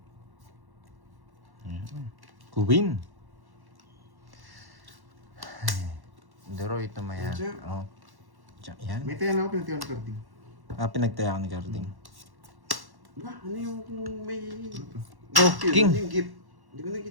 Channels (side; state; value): left; late; 1.1 ms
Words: Queen. Daro ito mayan. Jack. Oh. Jack yan. May tayo na ako, pinatiwan ni Carding. Pinagtaya ko ni Carding. Ba, ano yung kung may... Oh, Yun, king. ano yung gift? Hindi ko